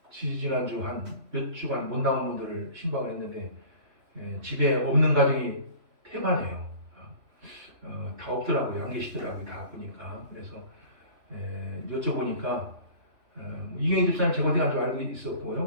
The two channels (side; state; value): left; late; 3.0 ms